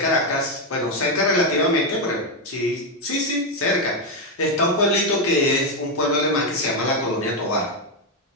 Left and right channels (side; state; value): both; normal; correlation 0.05